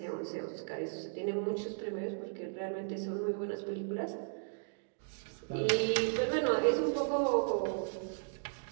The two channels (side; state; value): left; silent; digital silence